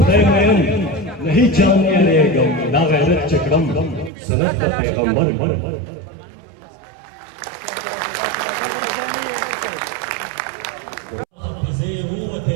مین نه هیڅ چا نه یادېږم دا غیرت چې کړم سنت د پیغمبر حافظې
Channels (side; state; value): left; drops out; at 4.1 s